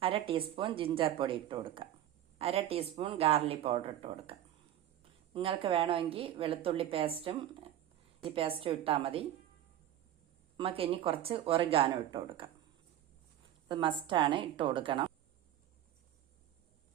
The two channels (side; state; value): left; quieter; 12.0 dB